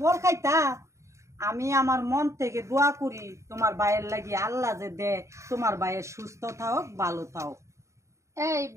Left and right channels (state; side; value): late; left; 0.14 ms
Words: ফল খাইতা। আমি আমার মন থেকে দোয়া করি তোমার ভাইয়ের লাগি আল্লাহ যে দে তোমার ভাইয়ের সুস্থ থাক, ভালো থাক। এই